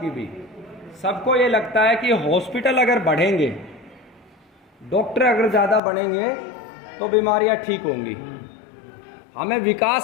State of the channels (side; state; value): right; drops out; at 5.8 s